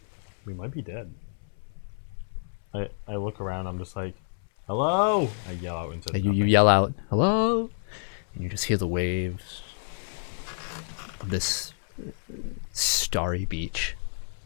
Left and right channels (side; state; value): right; silent; 59 dB below the other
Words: We might be dead. I look around, I'm just like, hello! I yell out into You yell out, hello? And you just hear the waves of this starry beach.